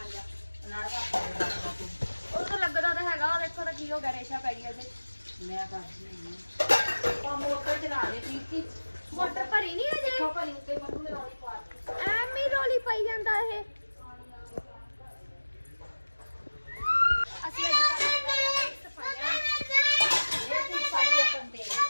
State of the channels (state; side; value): inverted; both; correlation -1.00